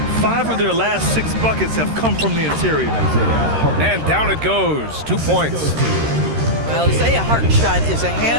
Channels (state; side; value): late; left; 13 ms